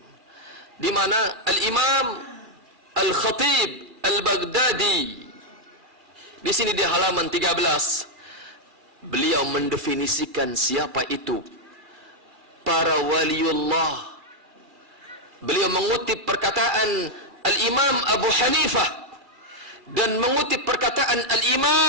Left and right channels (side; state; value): left; late; 2.3 ms